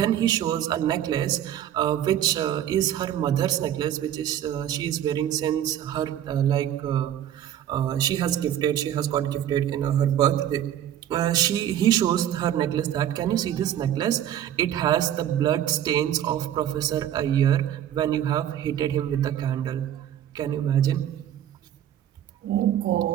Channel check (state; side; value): quieter; left; 10.9 dB